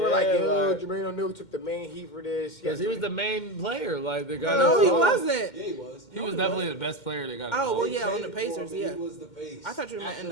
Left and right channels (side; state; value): right; late; 2.1 ms